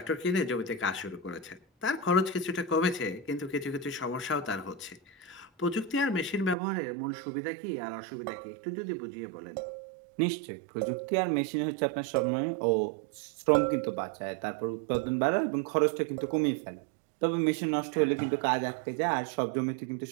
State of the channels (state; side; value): drops out; left; at 6.6 s